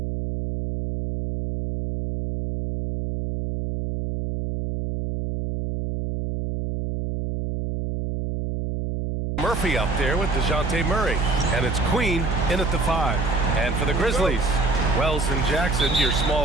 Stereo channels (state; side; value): noise; right; hum, 3 dB below the sound